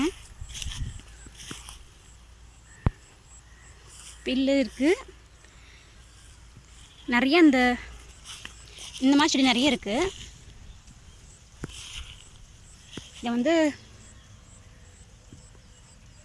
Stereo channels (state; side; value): identical; both; correlation 1.00